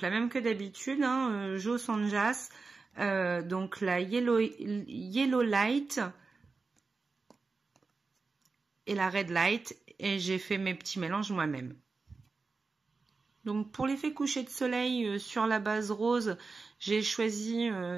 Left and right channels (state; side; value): quieter; left; 4.2 dB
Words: la même que d'habitude, hein, Joe Sanjas, donc la Yellow Light et la Red Light, et j'ai fait mes petits mélanges moi-même. Donc pour l'effet coucher de soleil sur la base rose, j'ai choisi